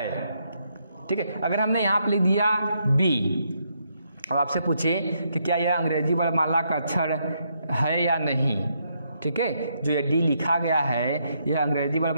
ठीक है, अगर हमने यहाँ पर लिख दिया बी और आपसे पूछे कि क्या यह अंग्रेजी वर्णमाला का अक्षर है या नहीं, ठीक है, जो ये डी लिखा गया है यह अंग्रेजी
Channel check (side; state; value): both; inverted; correlation -0.77